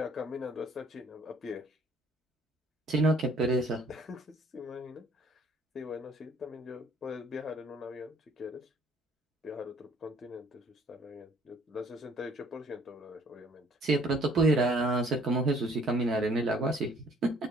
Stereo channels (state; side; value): normal; both; correlation 0.59